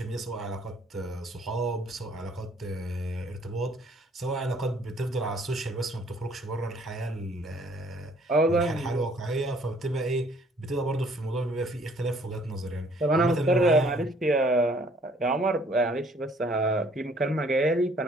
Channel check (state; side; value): normal; both; correlation 0.60